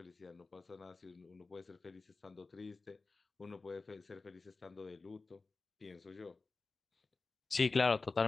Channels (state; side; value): quieter; right; 3.8 dB